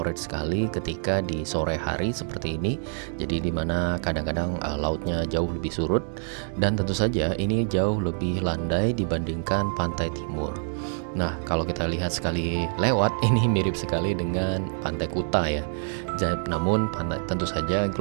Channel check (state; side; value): silent; left; digital silence